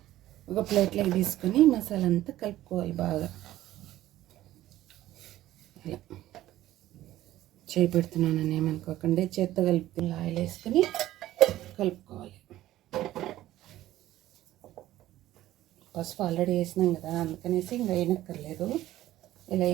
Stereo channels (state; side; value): quieter; left; 14.5 dB